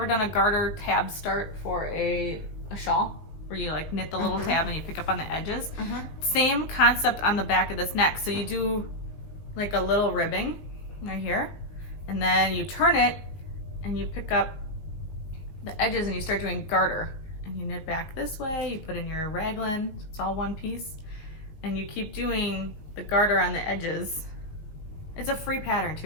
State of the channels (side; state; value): right; late; 19 ms